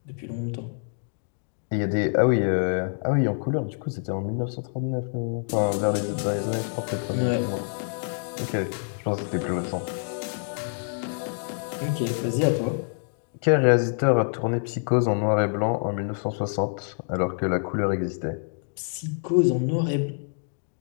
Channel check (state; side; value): silent; right; digital silence